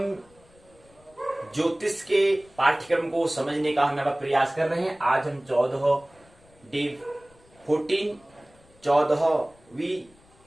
ज्योतिष के पाठ्यक्रम को समझने का हम प्रयास कर रहे हैं। आज हम 14वीं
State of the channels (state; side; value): noise; left; rumble, 29 dB below the sound